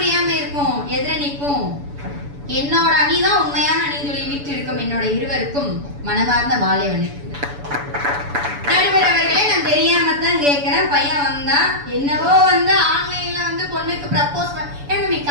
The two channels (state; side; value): late; left; 7.0 ms